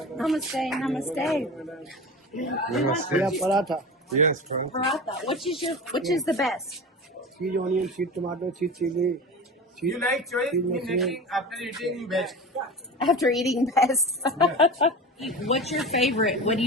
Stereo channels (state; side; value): normal; both; correlation 0.31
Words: Namaste, namaste. Namaste. Yeah, paratha. Yes, paratha. Paratha. Which is the best? Cheese onion, cheese tomato, cheese chili. You like choice in making after eating best. After eating best. What's your favorite? What do